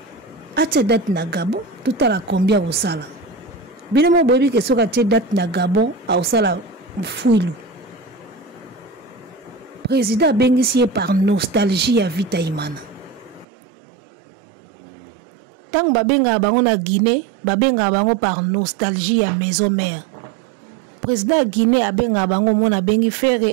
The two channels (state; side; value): drops out; left; at 13.5 s